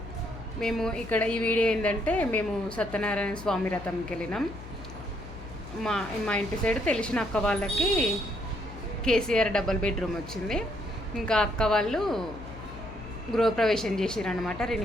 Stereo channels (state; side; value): noise; left; hum, 14 dB below the sound